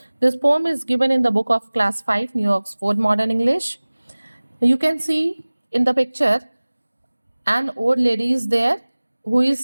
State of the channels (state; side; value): inverted; both; correlation -1.00